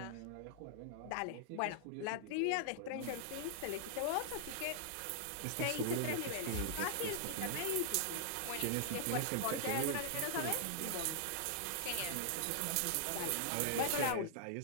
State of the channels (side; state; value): both; different; correlation -0.01